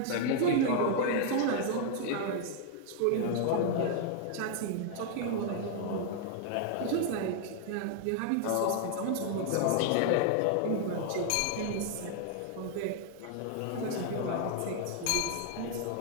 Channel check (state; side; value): different; both; correlation 0.00